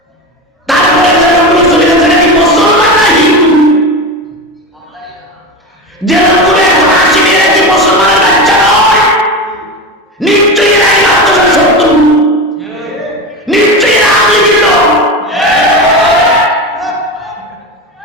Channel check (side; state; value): both; normal; correlation 0.22